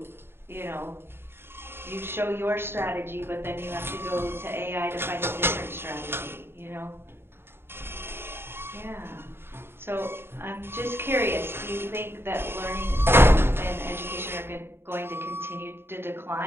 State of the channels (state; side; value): late; left; 0.11 ms